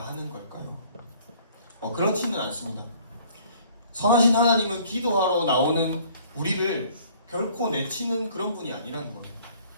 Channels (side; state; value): both; inverted; correlation -0.56